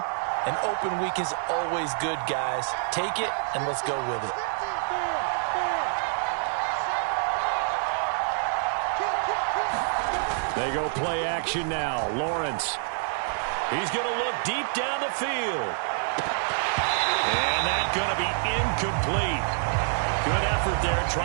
an open week is always good, guys. Take it and let's go with it. They go play action now. Lawrence. He's going to look deep down the field. And that's going to be incomplete. Good effort there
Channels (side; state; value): left; silent; digital silence